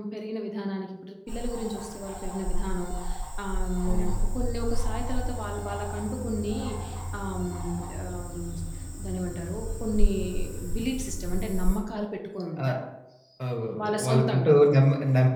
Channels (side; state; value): both; identical; correlation 1.00